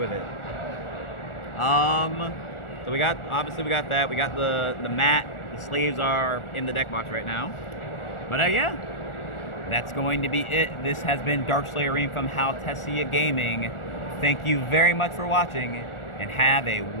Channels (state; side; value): late; right; 1.4 ms